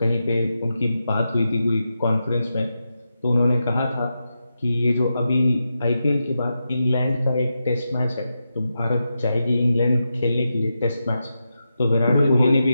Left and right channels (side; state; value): both; inverted; correlation -0.88